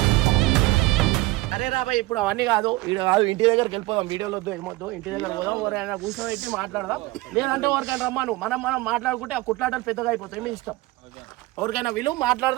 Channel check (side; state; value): left; quieter; 20.0 dB